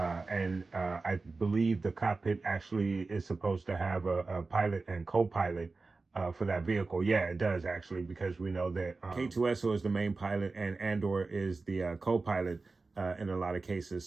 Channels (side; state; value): left; quieter; 3.8 dB